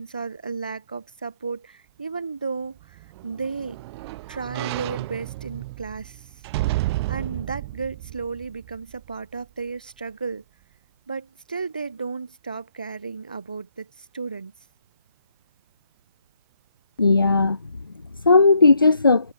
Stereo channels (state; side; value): inverted; both; correlation -0.70